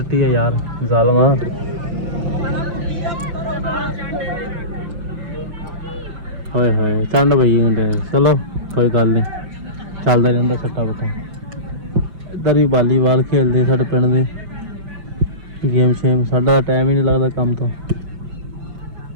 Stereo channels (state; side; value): late; left; 5.8 ms